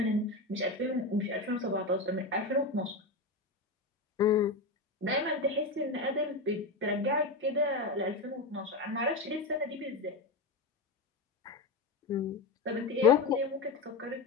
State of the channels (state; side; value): quieter; right; 3.2 dB